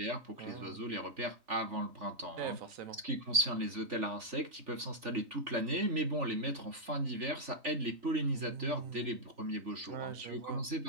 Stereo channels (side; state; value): left; late; 3.4 ms